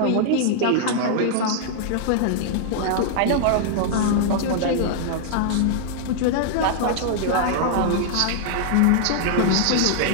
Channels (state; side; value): different; both; correlation 0.00